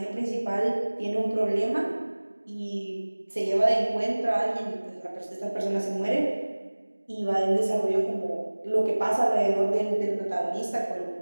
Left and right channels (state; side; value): inverted; both; correlation -1.00